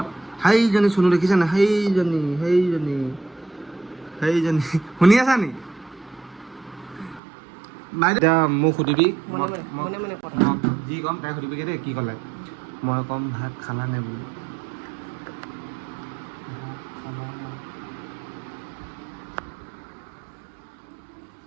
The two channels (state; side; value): drops out; left; at 7.2 s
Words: সেইজনী চুনু দেখিছা না সেইজনী শুনি আছা নি এতিয়া মোক সুধিবি যি ক'ম তাই সুধিবিগৈ দেই কি ক'লে মই ক'ম ভাত খালা নে বুলি